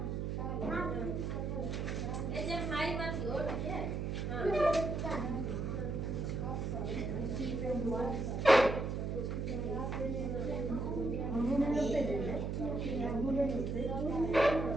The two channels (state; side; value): noise; right; hum, 1 dB below the sound